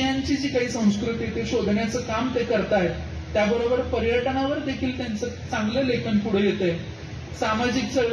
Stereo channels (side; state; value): both; identical; correlation 1.00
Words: जी काही संस्कृती ते शोधण्याचं काम ते करतायत. त्याबरोबर पर्यटनावर देखील त्यांचं चांगलं लेखन पुढे येतंय. सामाजिक